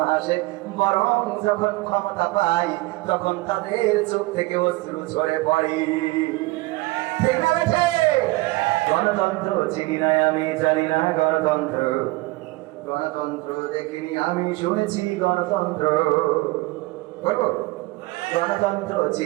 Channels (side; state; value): left; quieter; 21.5 dB